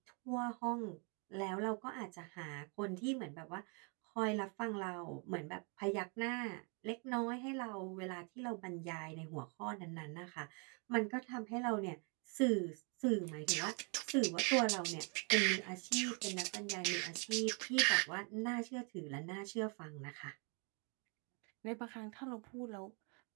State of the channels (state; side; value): quieter; left; 36.1 dB